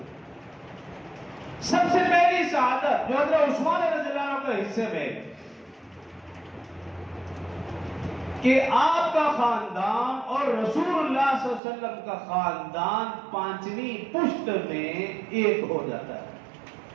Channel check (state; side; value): drops out; left; at 11.6 s